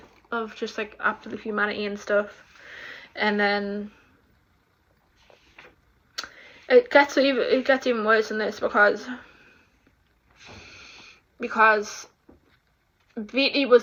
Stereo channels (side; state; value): both; identical; correlation 1.00